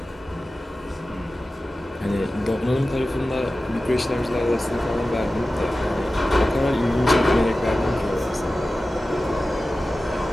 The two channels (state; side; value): normal; both; correlation 0.95